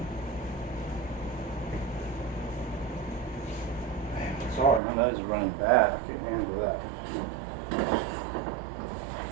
Sorry, my nose is running bad. I can't handle that.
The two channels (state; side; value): drops out; left; at 4.8 s